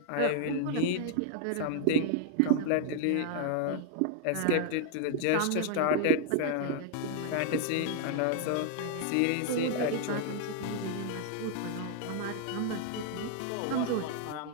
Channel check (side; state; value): both; different; correlation 0.00